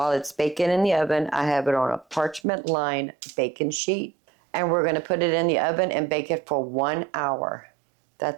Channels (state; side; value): drops out; left; at 2.4 s